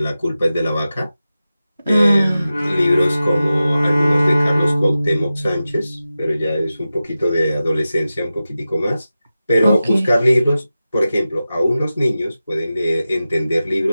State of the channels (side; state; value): both; inverted; correlation -0.94